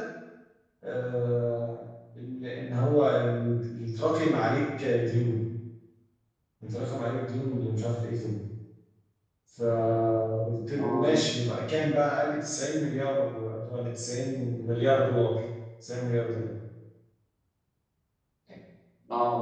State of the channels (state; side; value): identical; both; correlation 1.00